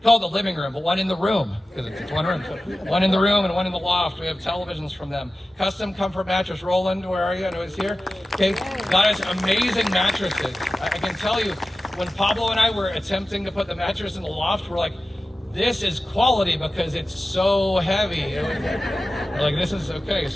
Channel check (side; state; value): both; normal; correlation 0.95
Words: call it the living room, but one in the room, because it's one room. So one in the room and one in the loft. We have televisions from them. Custom Comfort Mattress. Roland, where are you? I know he's here. Okay, got us amazing mattresses. I can tell you, when Pablo and I were attempting to put the mattress in the loft, we're like, this is quality because it's so heavy. We're like, this is okay,